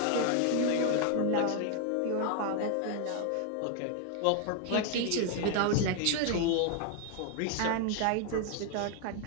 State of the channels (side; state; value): both; different; correlation 0.00